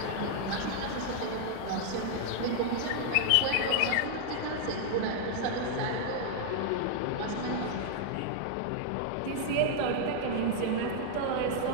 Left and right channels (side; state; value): both; different; correlation 0.00